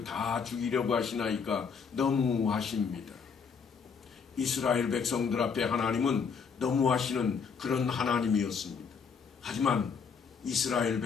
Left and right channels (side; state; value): right; quieter; 5.9 dB